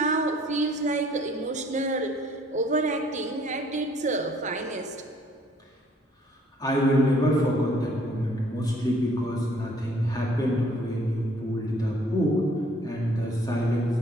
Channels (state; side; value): normal; both; correlation 0.60